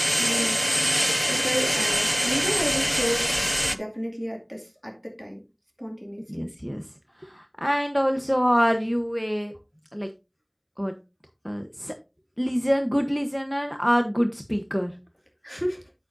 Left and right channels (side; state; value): both; identical; correlation 1.00